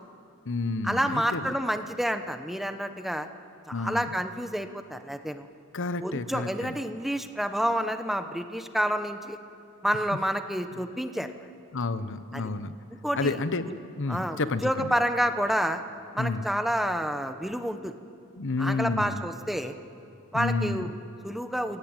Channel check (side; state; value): both; normal; correlation 0.79